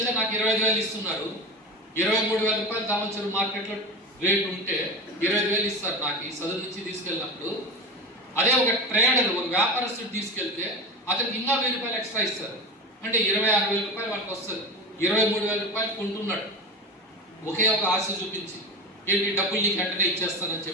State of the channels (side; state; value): both; normal; correlation 0.27